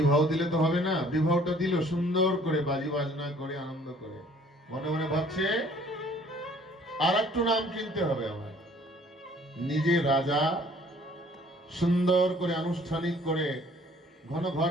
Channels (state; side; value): normal; both; correlation 0.57